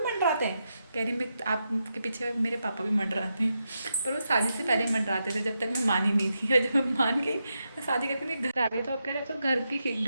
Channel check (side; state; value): both; inverted; correlation -0.86